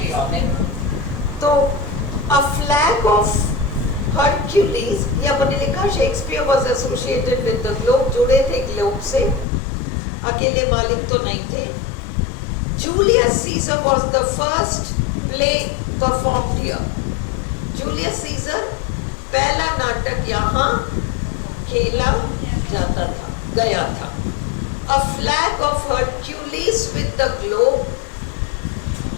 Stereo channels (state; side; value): drops out; right; at 9.5 s